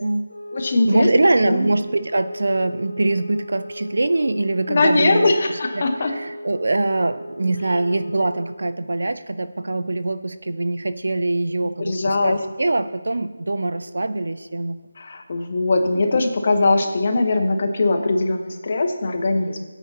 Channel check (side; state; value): both; inverted; correlation -0.93